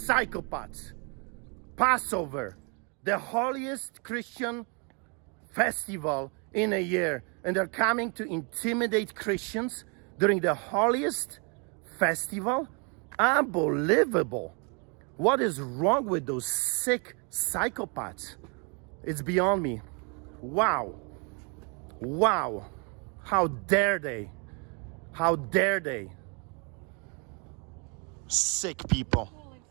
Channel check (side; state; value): left; quieter; 35.0 dB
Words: Passover, the holiest Christian festival in a year, and they're coming to intimidate Christians during the holiest festival? Unbelievable. What is wrong with those sick psychopaths? It's beyond me. Wow. Wow. How dare they? How dare they? Sick people.